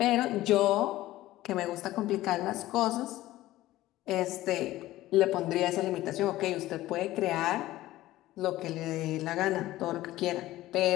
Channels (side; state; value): right; quieter; 16.1 dB